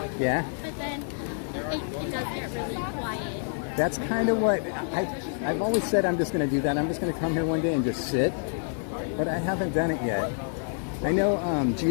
Yeah. But then it does get really quiet. That's kind of what I've always said. I'm just going to do that. I'm just going to come here one day and just sit. But I haven't done it yet. I know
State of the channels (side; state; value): right; silent; 60 dB below the other